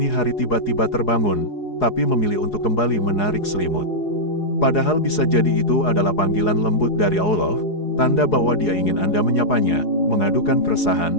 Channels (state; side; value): late; right; 4.8 ms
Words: hari tiba-tiba terbangun, tapi memilih untuk kembali menarik selimut. Padahal bisa jadi itu adalah panggilan lembut dari Allah, tanda bahwa Dia ingin Anda menyapanya, mengadukan